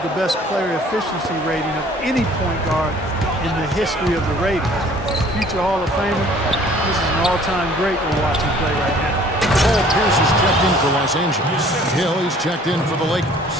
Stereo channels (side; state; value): both; normal; correlation 0.54